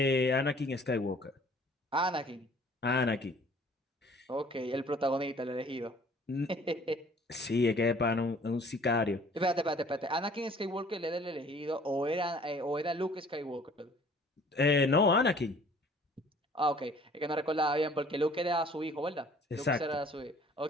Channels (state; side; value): normal; both; correlation 0.54